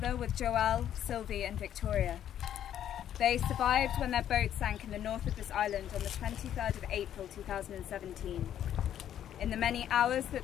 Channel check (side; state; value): right; quieter; 10.5 dB